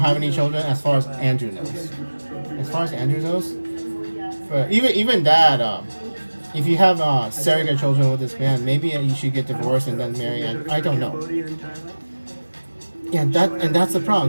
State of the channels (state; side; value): inverted; both; correlation -1.00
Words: any children, as far as Andrew knows. As far as Andrew knows. But even that, if you have surrogate children with this man, maybe you should get divorced and then marry. And I don't know. Yeah, that's the